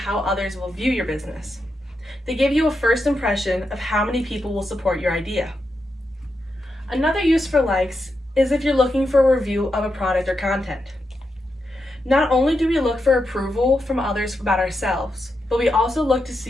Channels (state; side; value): normal; both; correlation 0.86